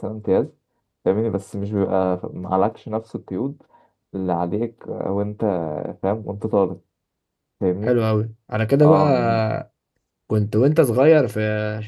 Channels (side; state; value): both; identical; correlation 1.00